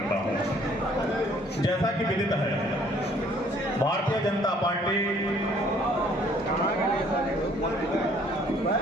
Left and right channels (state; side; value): normal; both; correlation 0.60